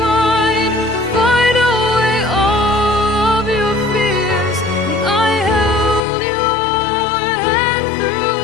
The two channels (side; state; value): right; drops out; at 6.0 s